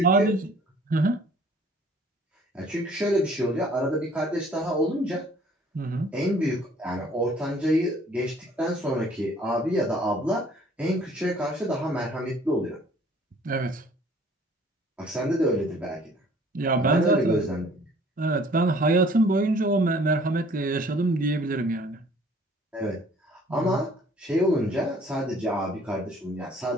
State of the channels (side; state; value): both; normal; correlation 0.55